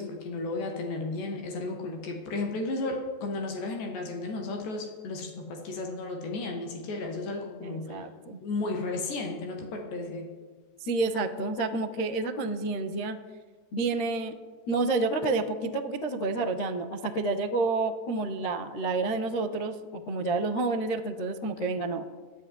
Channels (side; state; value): right; late; 14 ms